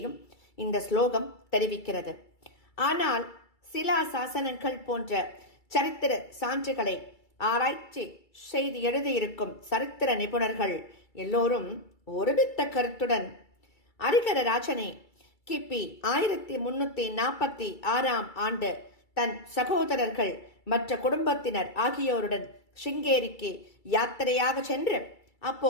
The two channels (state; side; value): late; right; 2.3 ms